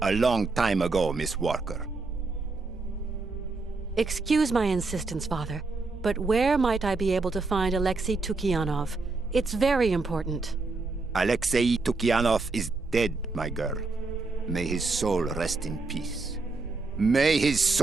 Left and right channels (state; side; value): quieter; left; 3.7 dB